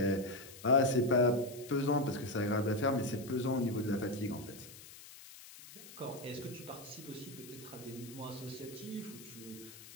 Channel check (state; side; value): noise; left; hiss, 17 dB below the sound